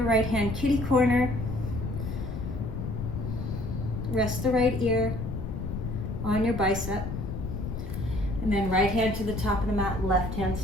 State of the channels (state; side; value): noise; left; rumble, 5 dB below the sound